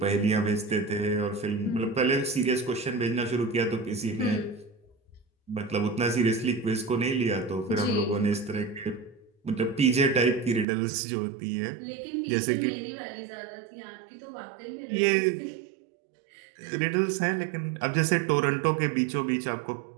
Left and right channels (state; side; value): drops out; left; at 10.7 s